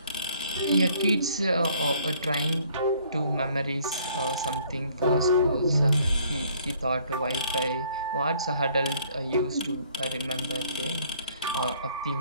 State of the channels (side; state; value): both; inverted; correlation -0.60